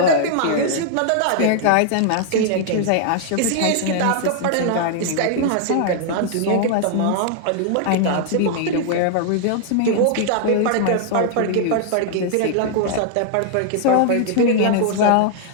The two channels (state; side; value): different; both; correlation -0.01